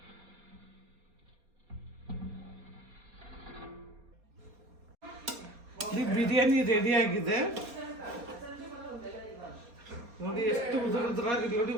ಈ ಬಿರಿಯಾನಿ ರೆಡಿಯಾಗಿದೆ ನೋಡಿ. ಎಷ್ಟು ಉದುರಾಗಿ ನೋಡಿ.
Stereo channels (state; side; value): late; left; 4.4 ms